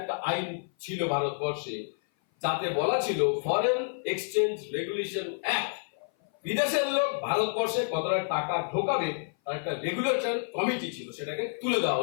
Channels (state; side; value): silent; right; 56 dB below the other